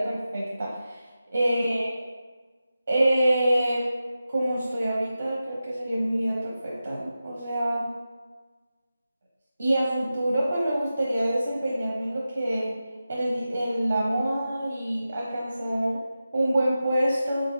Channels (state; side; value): inverted; both; correlation -0.93